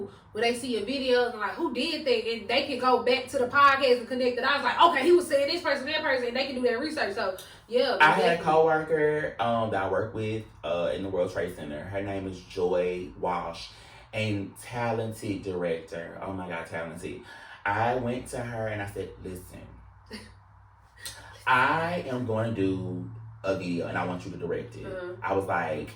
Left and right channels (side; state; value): both; identical; correlation 1.00